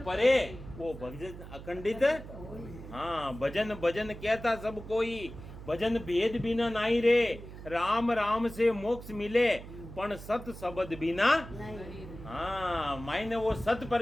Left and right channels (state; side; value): noise; right; hum, 13 dB below the sound